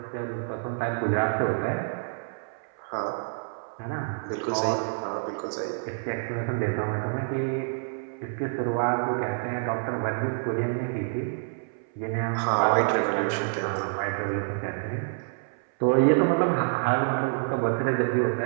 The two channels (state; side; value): silent; left; 60 dB below the other